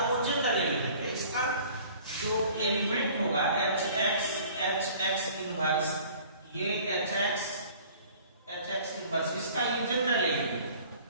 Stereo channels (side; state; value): both; inverted; correlation -0.50